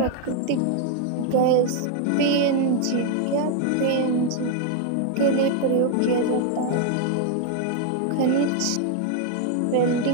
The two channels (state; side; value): different; both; correlation 0.00